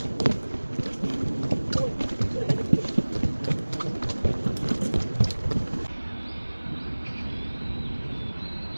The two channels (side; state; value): both; inverted; correlation -1.00